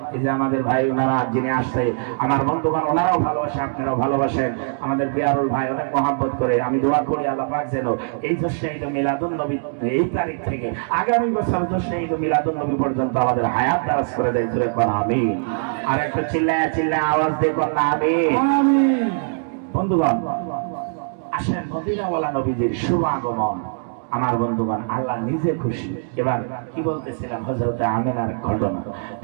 এই যে আমাদের ভাই ওনারা যিনি আসছে আমার বন্ধুগণ, ওনারাও ভালোবাসে, আপনারাও ভালোবাসেন। আমাদের বিয়ারুল ভাই অনেক মহাব্বত করে। আমি দোয়া করি আল্লাহ পাক যেন এই জশ্নে ঈদ মিলাদুন নবী এই তারিখ থেকে আগামী বছর জশ্নে ঈদ মিলাদুন নবী পর্যন্ত আমাদের হায়াত দারাজ করে দেয়। জোরে কোন আমিন। আর একটু চিল্লায় চিল্লায় আওয়াজ দিয়ে কোন আমিন। বন্ধুগণ আসেন মদিনাওয়ালা নবীজির শুভ আগমন। আমার বন্ধুগণ আল্লাহ নিজে খুশি। এবার কি বলতেছিলাম, হযরতে আমিনার ঘটনা।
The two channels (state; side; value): silent; left; digital silence